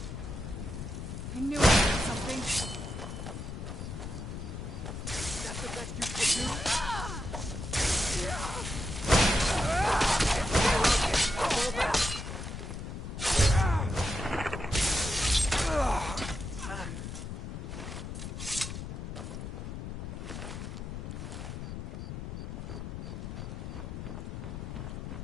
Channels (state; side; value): noise; left; rumble, 7 dB below the sound